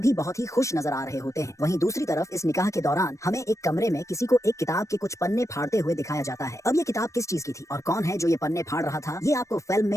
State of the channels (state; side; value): late; right; 0.15 ms